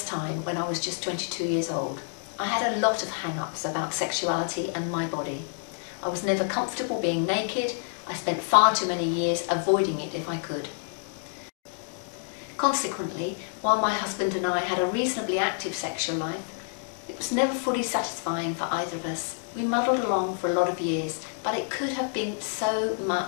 time when I was just 22 years old. I had a lot of hang-ups about sexuality and my body. I was never comfortable being naked. I spent far too many years avoiding it if I could. Consequently, while my husband and I had a reasonably active sexual life, it was never fully satisfying for either of us. We muddled along for a lot of years, but it could have been so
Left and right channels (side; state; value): right; silent; digital silence